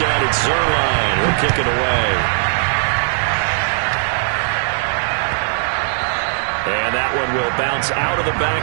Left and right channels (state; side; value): silent; left; digital silence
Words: it's Zerline. He'll kick it away. And that one will bounce out of the